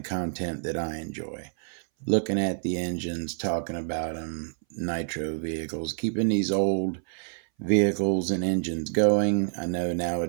content that I enjoy. Looking at the engines, talking about them, nitro vehicles, keeping these old vehicles and engines going. I know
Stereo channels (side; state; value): left; silent; 60 dB below the other